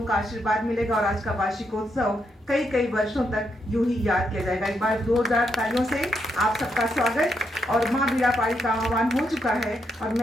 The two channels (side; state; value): both; normal; correlation 0.80